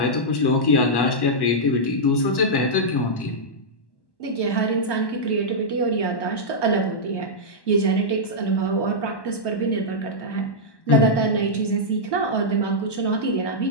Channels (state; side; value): late; right; 1.1 ms